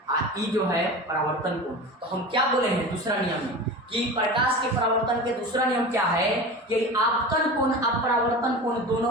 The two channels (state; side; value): normal; both; correlation 0.31